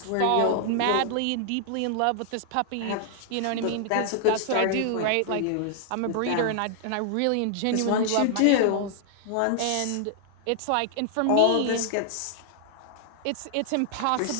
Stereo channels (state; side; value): different; both; correlation -0.01